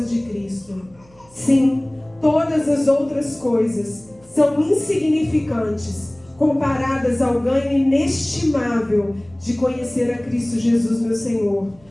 de Cristo. Sim, todas as outras coisas são insignificantes comparadas ao ganho inestimável de conhecer a Cristo Jesus, meu Senhor.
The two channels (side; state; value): right; noise; hum, 28 dB below the sound